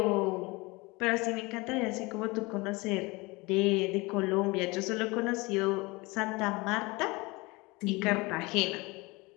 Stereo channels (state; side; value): quieter; right; 24.5 dB